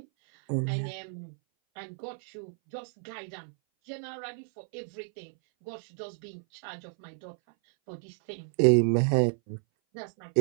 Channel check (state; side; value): silent; left; 57 dB below the other